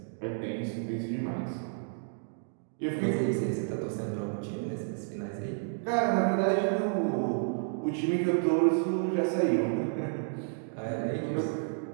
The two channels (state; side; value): silent; left; digital silence